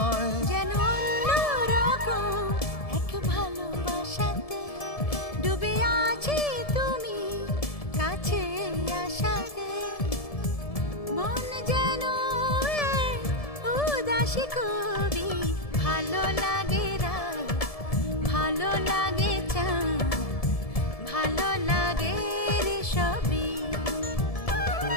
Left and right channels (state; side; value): late; right; 1.7 ms